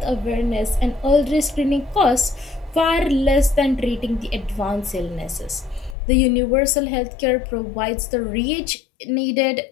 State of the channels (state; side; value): drops out; right; at 6.0 s